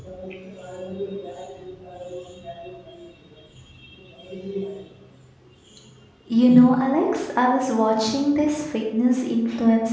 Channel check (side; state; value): both; identical; correlation 1.00